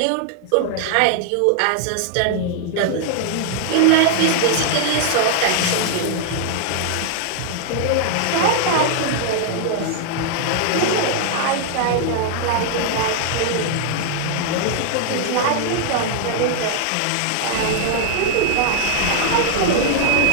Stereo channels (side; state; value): both; different; correlation 0.00